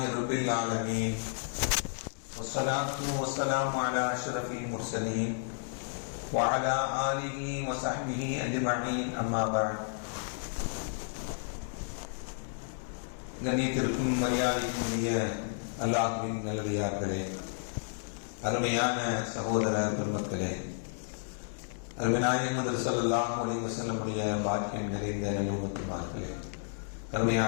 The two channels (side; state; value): right; silent; 56 dB below the other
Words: رب العالمين والصلاة والسلام على أشرف المرسلين وعلى آله وصحبه أجمعين أما بعد. கண்ணியத்திற்கும் மரியாதைக்குரிய அல்லாஹ்வின் நல்லடியார்களே, அருமையான சகோதர பெருமக்களே, அருமைநாயகம் ஸல்லல்லாஹு அலைஹி வஸல்லம் பாக்கியம் நிறைந்த நல்லும்மத்துமார்களே,